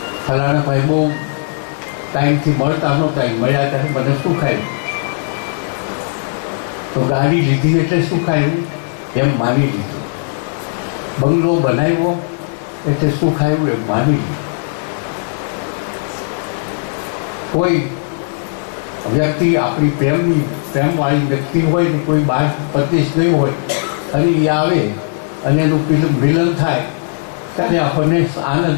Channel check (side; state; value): right; silent; 61 dB below the other